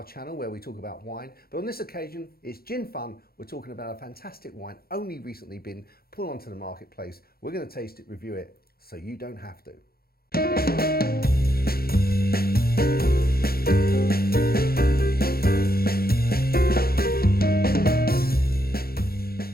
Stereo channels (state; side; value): late; right; 0.44 ms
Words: channel where we talk about wine. But on this occasion, it's Gin Fun. We're talking about a fantastic wine only recently been put onto the marketplace. We're going to taste it, review it, so you don't have to.